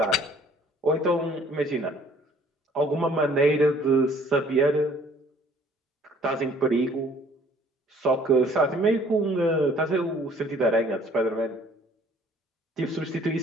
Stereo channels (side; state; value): both; normal; correlation 0.57